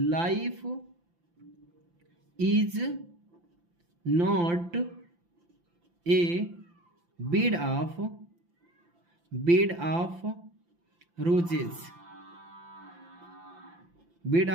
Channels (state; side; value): late; left; 5.8 ms